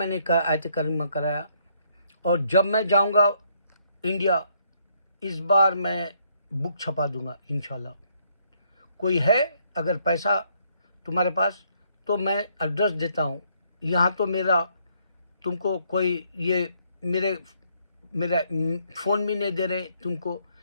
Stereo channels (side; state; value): both; inverted; correlation -0.70